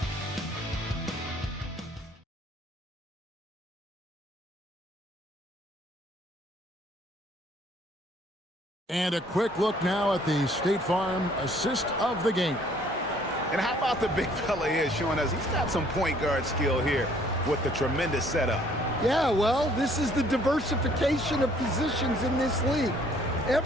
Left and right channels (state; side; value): normal; both; correlation 0.60